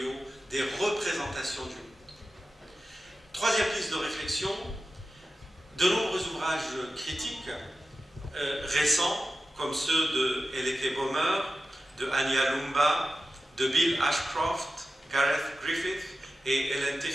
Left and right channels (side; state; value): both; normal; correlation 0.93